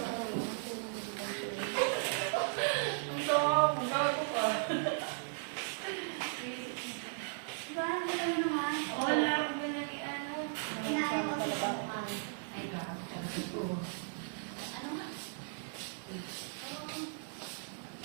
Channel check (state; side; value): silent; left; digital silence